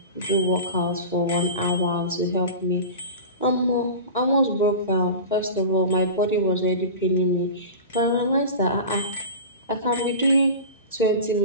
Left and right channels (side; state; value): both; inverted; correlation -0.31